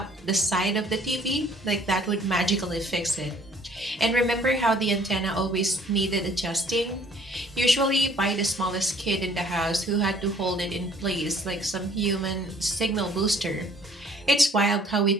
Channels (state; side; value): normal; both; correlation 0.57